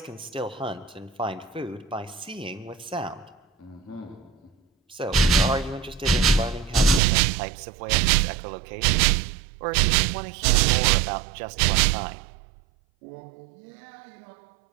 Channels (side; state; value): left; drops out; at 7.0 s